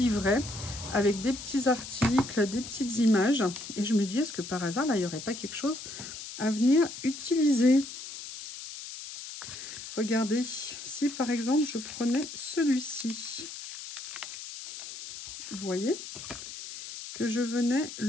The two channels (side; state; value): left; noise; hiss, 11 dB below the sound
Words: avec des petits articles, des petites images. Et je me dis, est-ce que par hasard, là, il n'y aurait pas quelque chose à venir utiliser? Regardez, si par exemple, je prenais celui-ci. Vous voyez que je venais